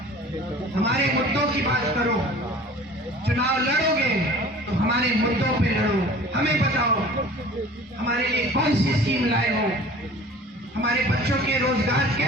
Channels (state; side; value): normal; both; correlation 0.44